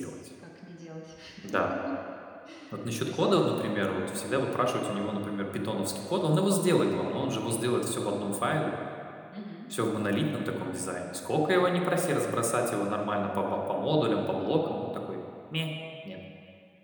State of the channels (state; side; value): identical; both; correlation 1.00